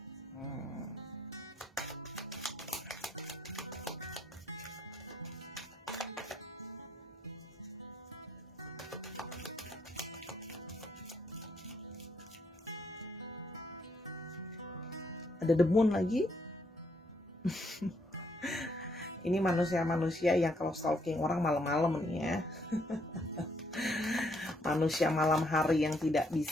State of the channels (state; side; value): normal; both; correlation 0.72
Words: Ada the moon lagi. Ini manusia-manusia yang kalau stalking orang malam-malam nih ya. Manusia malam hari yang tidak